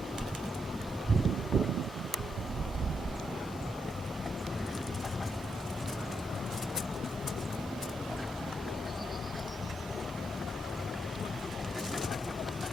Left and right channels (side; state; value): both; normal; correlation 0.80